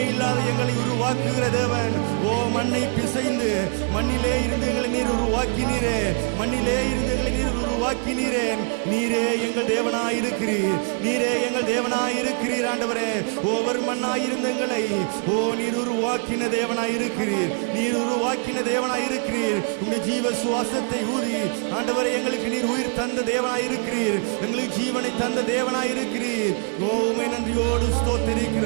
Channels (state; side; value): quieter; left; 39.8 dB